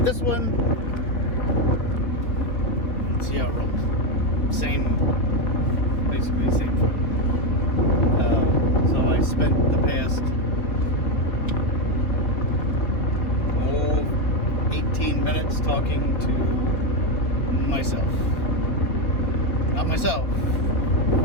this one. Let's see how it rolls. Basically same photo. So I spent the past 18 minutes talking to myself. Not myself,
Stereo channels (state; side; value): late; right; 4.1 ms